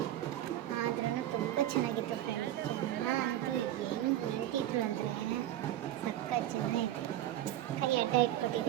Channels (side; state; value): left; quieter; 13.1 dB